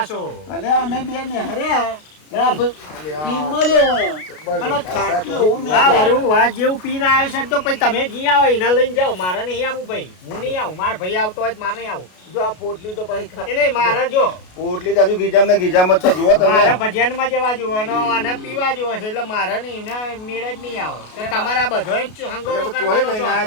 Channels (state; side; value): late; right; 33 ms